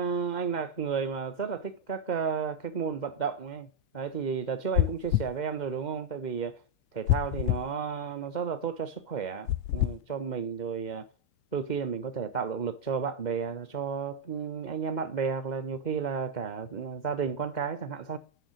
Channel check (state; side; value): late; right; 2.1 ms